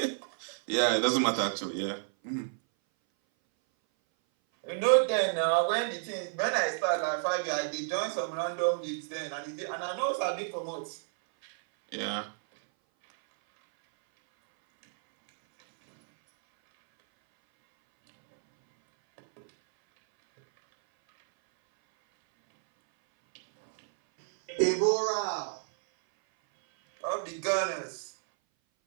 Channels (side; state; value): left; silent; 58 dB below the other